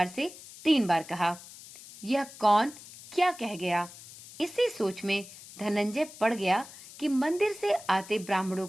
से 3 बार कहा। यह कौन क्या कह गया? इसी सोच में धनंजय पड़ गया कि मंदिर से आते ब्राह्मणों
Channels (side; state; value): left; noise; hiss, 17 dB below the sound